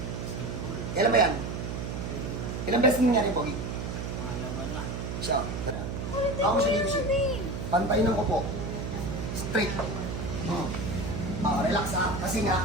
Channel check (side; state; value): right; noise; hum, 4 dB below the sound